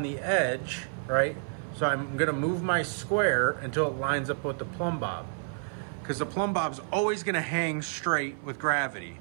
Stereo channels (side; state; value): left; silent; 56 dB below the other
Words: the edge, right? So I'm gonna move my square until it lines up with the plumb bob, because the plumb bob's always gonna hang straight with gravity.